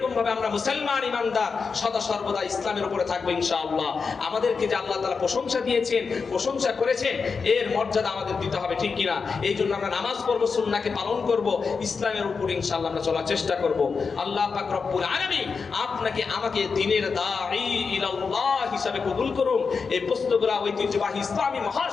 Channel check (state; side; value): quieter; right; 5.1 dB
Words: ভাবে আমরা মুসলমান ইমানদার সদা সর্বদা ইসলামের উপরে থাকবো ইনশাআল্লাহ। আমাদেরকে যে আল্লাহ তাআলা প্রশংসা দিয়েছেন, প্রশংসা করেছেন, এর মর্যাদা আমাদের দিতে হবে, ঠিক কিনা? এই জন্য আমরা নামাজ পড়বো, সুন্নাহকে পালন করব, ইসলামের উপর ইনশাআল্লাহ আমরা চলার চেষ্টা করব। আল্লাহ পাক রব্বুল আলামিন আপনাকে আমাকে দ্বীনের দাঈ ইলাল্লাহ হিসাবে কবুল করুন। এই পুস্তকগুলো ঐতিহ্যবাহী ইসলামী